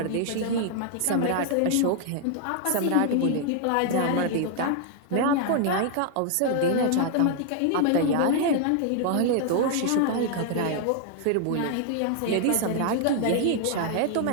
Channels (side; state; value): both; different; correlation 0.00